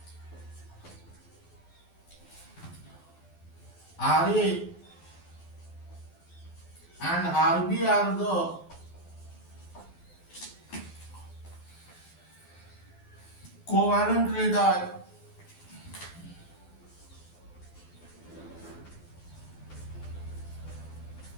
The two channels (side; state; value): right; late; 12 ms